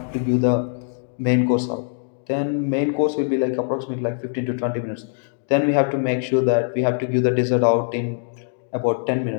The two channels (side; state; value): right; silent; digital silence